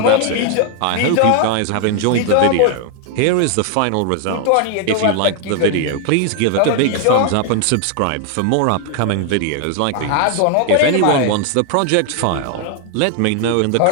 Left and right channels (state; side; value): different; both; correlation 0.00